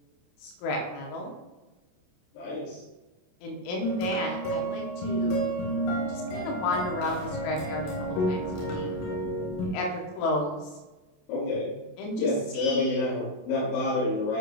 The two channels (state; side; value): late; right; 27 ms